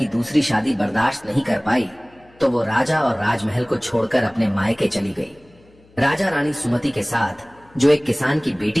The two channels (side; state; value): left; noise; hum, 29 dB below the sound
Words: दूसरी शादी बर्दाश्त नहीं कर पाई तो वो राजा और राजमहल को छोड़कर अपने मायके चली गई। राजा रानी सुमति के साथ, जो एक किसान की